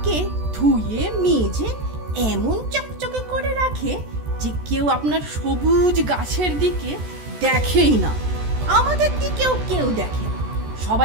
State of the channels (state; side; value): late; left; 14 ms